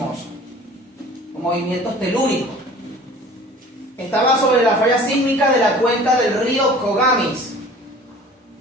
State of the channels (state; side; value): normal; both; correlation 0.45